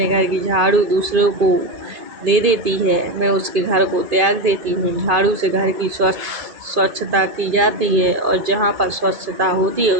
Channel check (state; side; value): late; left; 2.5 ms